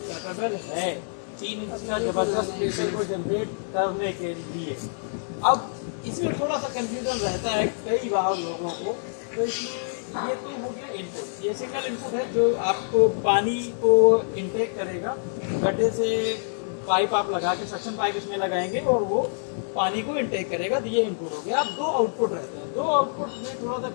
कैपेबल है 3 इंच का जबरदस्त प्रेशर को जनरेट करने के लिए। अब इसमें थोड़ा सा कंफ्यूजन रहता है कई बार लोगों को। तो इसमें ये तो हो गया इनपुट, ये सिंगल इनपुट है जो आपको पानी को इनटेक करेगा। गड्ढे से पाइप आप लगा के सक्शन पाइप इसमें लगाएंगे और वो पानी को इनटेक करेगा। तो ये इनपुट हो गया। अब 2 आउटपुट रहते हैं। 2 आउटपुट में थोड़ा सा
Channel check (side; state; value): right; silent; digital silence